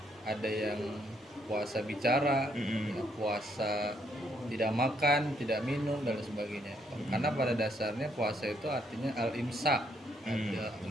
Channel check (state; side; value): normal; both; correlation 0.72